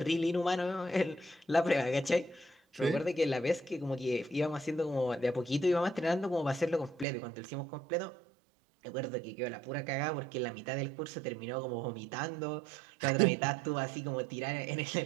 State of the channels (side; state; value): left; drops out; at 7.1 s